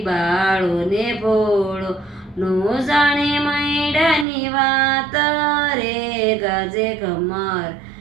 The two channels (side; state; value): left; drops out; at 4.2 s